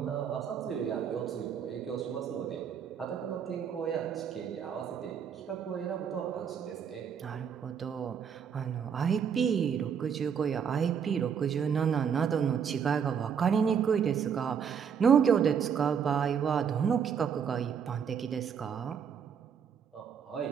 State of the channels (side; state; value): left; quieter; 7.4 dB